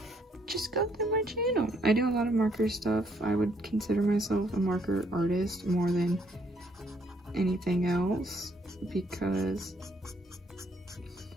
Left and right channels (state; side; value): normal; both; correlation 0.69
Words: just go through my channel. I do a lot of marker stuff. I would consider myself a marker artist more than anything else because